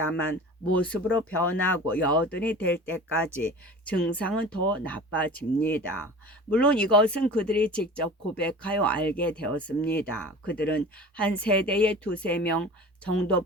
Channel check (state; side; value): normal; both; correlation 0.39